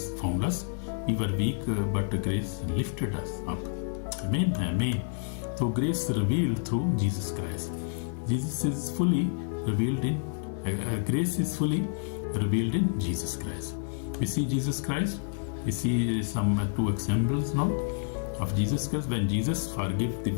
found us. We were weak, but grace lifted us up. Amen. Amen. So grace revealed through Jesus Christ. Jesus is fully revealed in grace is fully revealed in Jesus Christ. We see Jesus Christ. We see some two examples now of Jesus Christ. When Jesus forgave the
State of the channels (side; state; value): right; silent; 58 dB below the other